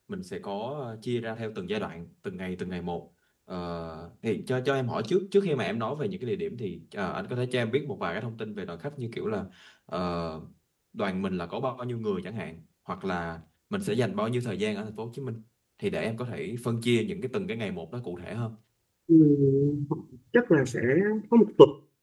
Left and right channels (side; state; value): both; identical; correlation 1.00